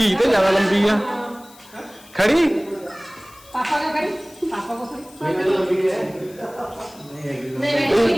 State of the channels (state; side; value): noise; left; hiss, 23 dB below the sound